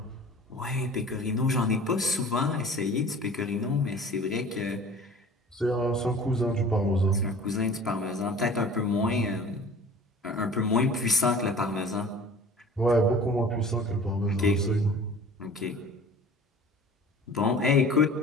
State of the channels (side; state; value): both; normal; correlation 0.44